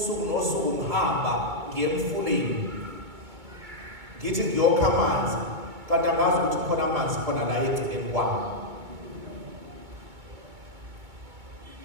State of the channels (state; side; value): late; left; 2.4 ms